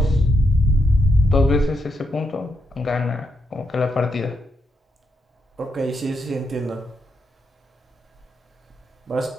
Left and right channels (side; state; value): both; normal; correlation 0.80